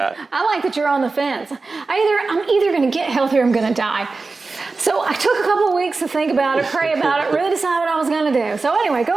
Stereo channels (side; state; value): left; quieter; 3.9 dB